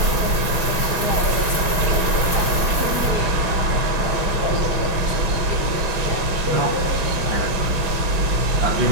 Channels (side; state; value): left; late; 6.1 ms